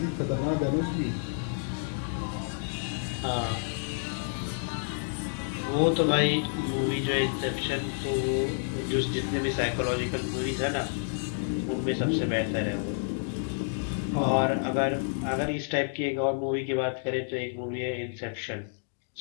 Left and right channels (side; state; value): right; silent; digital silence